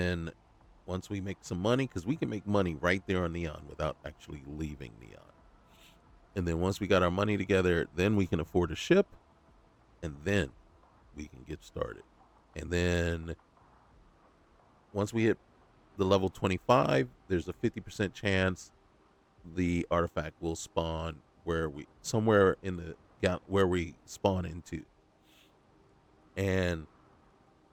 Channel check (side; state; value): both; identical; correlation 1.00